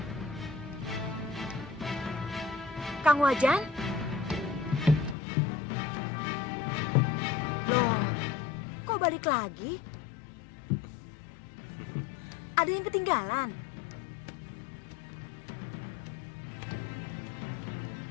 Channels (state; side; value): drops out; right; at 5.2 s